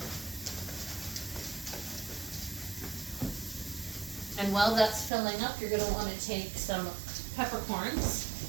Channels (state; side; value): drops out; left; at 5.1 s